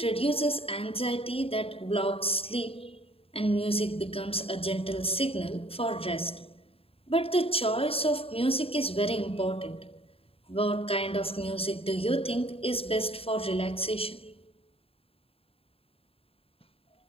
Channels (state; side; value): late; right; 0.27 ms